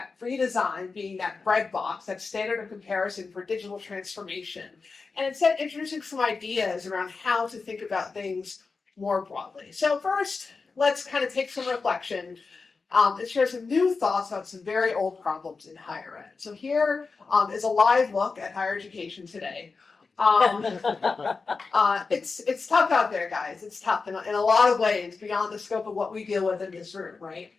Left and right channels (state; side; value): quieter; right; 4.4 dB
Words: redesign being that breadbox, that standard of comparison for digital transformation, and instead introducing some ideas around how to think about things more broadly. So first, let's kind of take some reflection and share some new thoughts about some very old problems in higher ed. So here is a live look at higher education today. It's tough out there, guys. It's tough in a lot of ways, beyond the scope of what we deal with in this room, right?